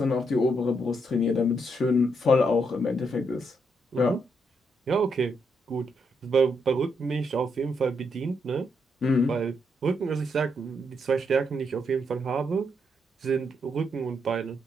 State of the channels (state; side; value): normal; both; correlation 0.78